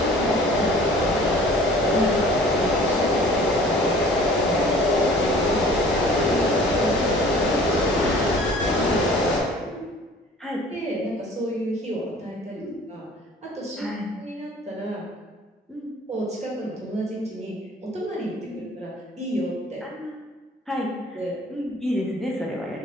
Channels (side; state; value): both; normal; correlation 0.49